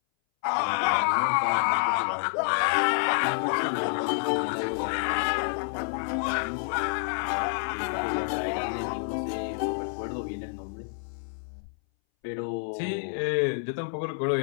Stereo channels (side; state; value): right; silent; 59 dB below the other